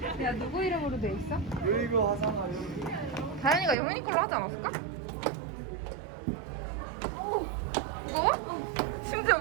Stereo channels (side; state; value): left; drops out; at 3.8 s